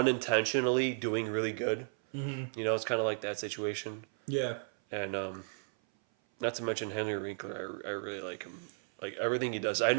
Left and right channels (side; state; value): left; silent; 55 dB below the other